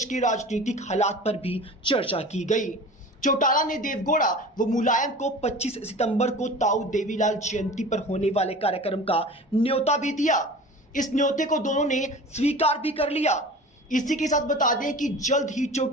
के राजनीतिक हालात पर भी चर्चा की गई। चौटाला ने देवगौड़ा व मुलायम को 25 सितंबर को ताऊ देवीलाल जयंती पर होने वाले कार्यक्रम का न्योता भी दिया। इस न्योते को दोनों ने स्वीकार भी कर लिया। इसी के साथ बता दें कि जल्द ही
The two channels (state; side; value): normal; both; correlation 0.38